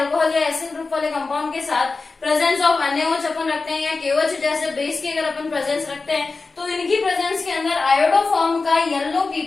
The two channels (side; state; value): right; quieter; 3.9 dB